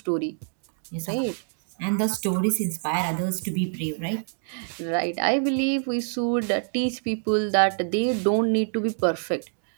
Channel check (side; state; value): left; silent; 61 dB below the other